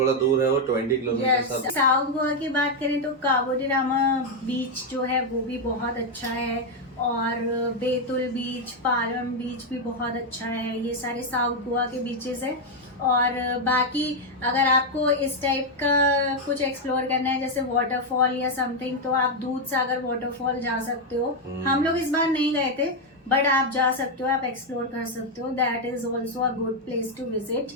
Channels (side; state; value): both; normal; correlation 0.02